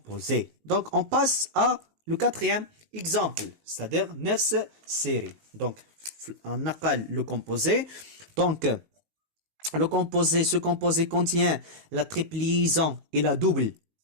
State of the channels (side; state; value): left; late; 19 ms